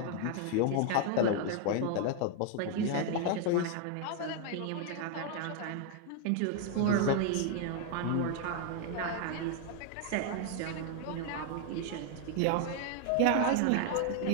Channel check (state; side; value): different; both; correlation 0.00